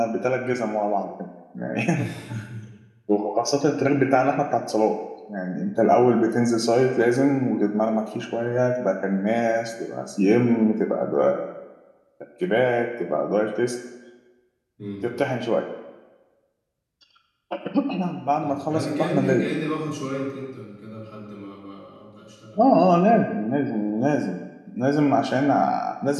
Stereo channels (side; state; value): both; identical; correlation 1.00